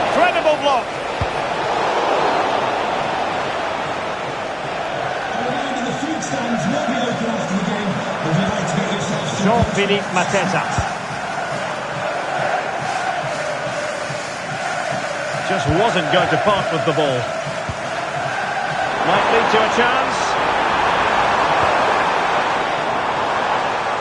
block. Jean-Philippe Mateta. Just wasn't going to part with the ball. Might lead to a chance.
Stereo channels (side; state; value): both; identical; correlation 1.00